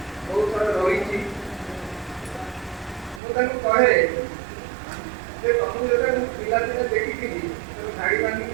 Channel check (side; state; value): left; drops out; at 3.2 s